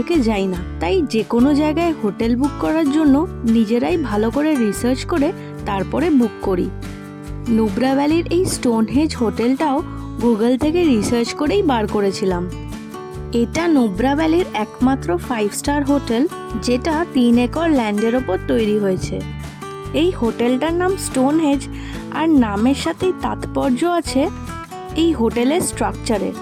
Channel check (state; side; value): identical; both; correlation 1.00